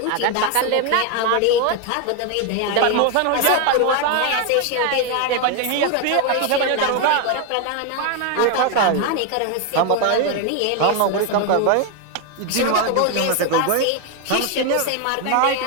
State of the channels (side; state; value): both; different; correlation 0.01